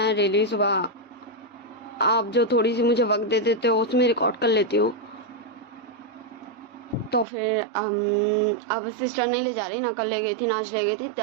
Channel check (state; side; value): drops out; left; at 7.2 s